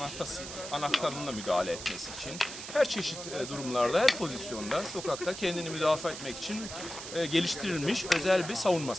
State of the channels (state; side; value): noise; right; hiss, 10 dB below the sound